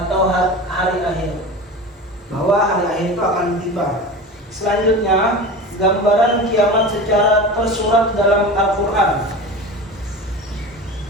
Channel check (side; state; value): both; normal; correlation 0.31